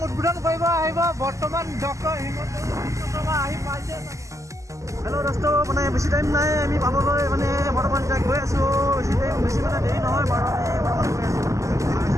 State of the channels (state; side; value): late; left; 0.16 ms